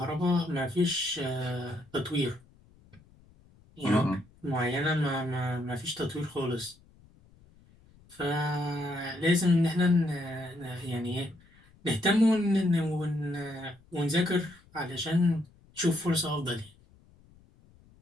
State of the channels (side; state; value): left; noise; rumble, 28 dB below the sound